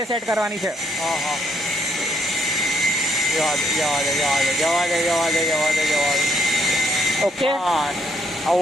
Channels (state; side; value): normal; both; correlation 0.72